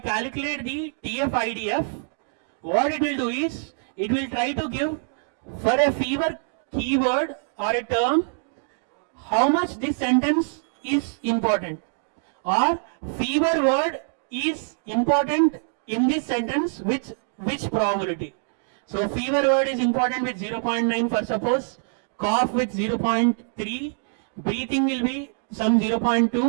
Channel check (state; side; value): silent; left; digital silence